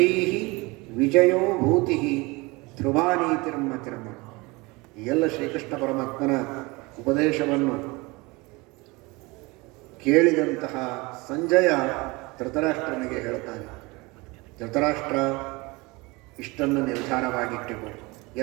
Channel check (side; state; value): left; quieter; 24.5 dB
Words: ವಿಜಯೋ ಭೂತಿ ಧ್ರುವಾನೀತಿರ್ಮತಿರ್ಮ. ಎಲ್ಲ ಶ್ರೀಕೃಷ್ಣ ಪರಮಾತ್ಮನ ಉಪದೇಶವನ್ನು ಕೇಳಿದಂತಹ ಸಂಜಯ ಧೃತರಾಷ್ಟ್ರನಿಗೆ ಹೇಳ್ತಾನೆ, ಧೃತರಾಷ್ಟ್ರ ಇಷ್ಟನ್ನು ನಿರ್ಧಾರವಾಗಿಟ್ಟುಕೊ.